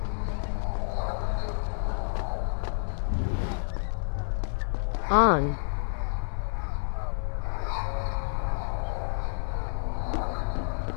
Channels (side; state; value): right; silent; digital silence